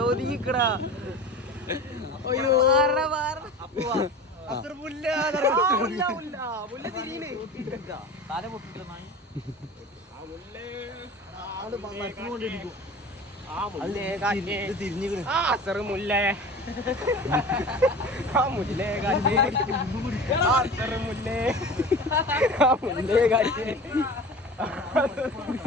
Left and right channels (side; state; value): both; normal; correlation 0.36